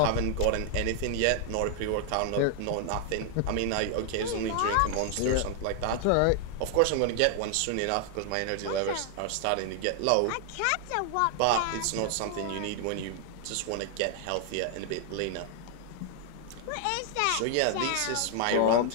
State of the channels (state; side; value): different; both; correlation 0.00